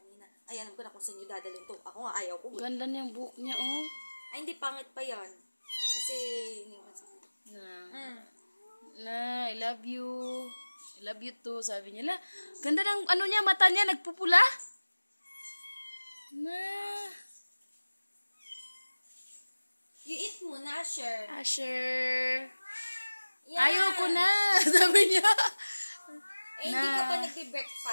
Ay, alam ko na kung saan niyo dadalhin to. Ako nga, ayaw ko. Ganda niyang buhok niya, oh. Ay, hindi, pangit pa yan. Kasi, Na, I love you. I love you too, sabi niya. La, ganda ng ano niya, mata niya, nagpupula. Na. You eat muna, Asher. Asher. Yeah. Ayoko na, sabi niya. Eh, hindi ka pa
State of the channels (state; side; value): inverted; both; correlation -1.00